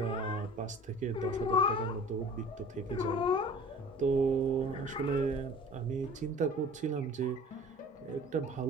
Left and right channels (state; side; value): normal; both; correlation 0.45